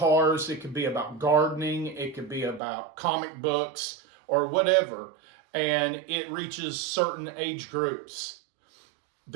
it could be about gardening, it could be about comic books or whatever, and it reaches certain age groups.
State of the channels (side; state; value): left; drops out; at 2.6 s